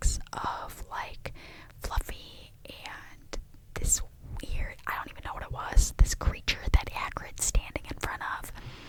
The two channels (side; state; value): both; identical; correlation 1.00